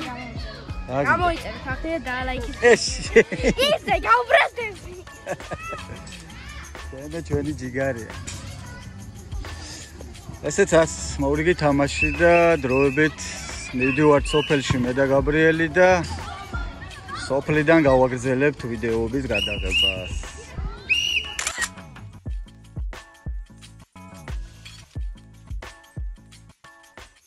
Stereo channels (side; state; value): both; identical; correlation 1.00